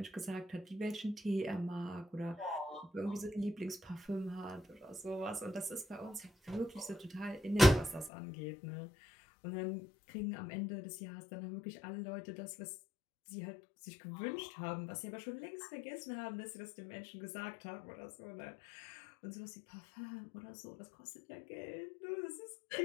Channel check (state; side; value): drops out; right; at 8.1 s